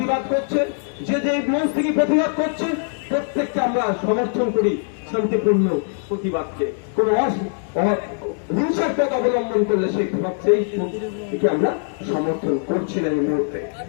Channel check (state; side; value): silent; right; digital silence